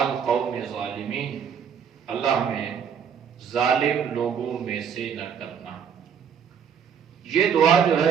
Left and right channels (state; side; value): quieter; left; 7.5 dB